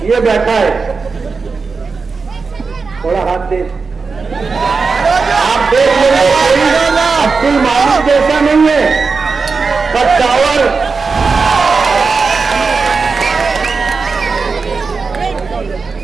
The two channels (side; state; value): left; quieter; 4.7 dB